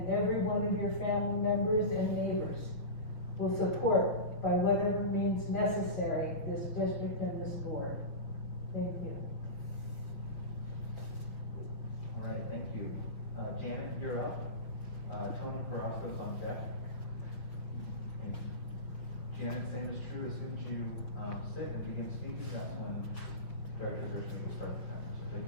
every one of your family members and neighbors will support by whatever means necessary this district and this board. Thank you. All right, thank you. Janet, you're up. Tony Carrasco's on deck. Thank you. Janet's name is true, as soon as you, sit and begin speaking, that's when Director Richmond will start the timer, so take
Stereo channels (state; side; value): late; right; 6.3 ms